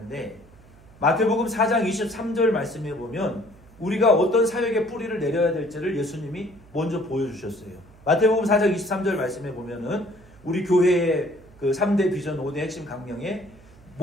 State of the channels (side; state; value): right; noise; hum, 25 dB below the sound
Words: 마태복음 4장 23절 말씀에 보면 우리가 어떤 사역의 뿌리를 내려야 될지를 예수님이 먼저 보여주셨어요. 마태복음 4장 23절 말씀에 보면은 우리 교회의 그 3대 비전 5대 핵심 강령의